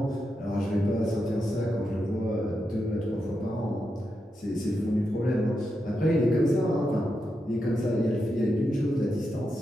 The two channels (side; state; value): both; normal; correlation 0.86